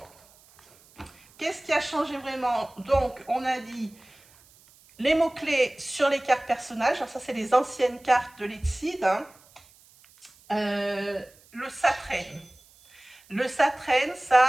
qu'est-ce qui a changé vraiment? Donc, on a dit les mots-clés sur les cartes personnages. Alors ça, c'est les anciennes cartes de l'Exceed. Hein. Le Satraine. Le Satraine, ça,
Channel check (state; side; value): noise; right; hiss, 28 dB below the sound